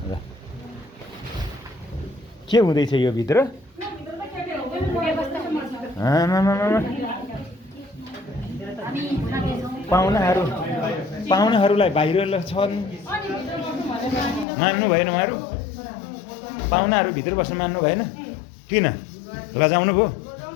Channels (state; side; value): drops out; right; at 14.5 s